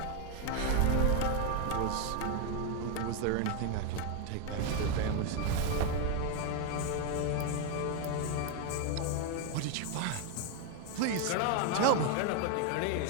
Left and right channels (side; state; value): both; different; correlation 0.01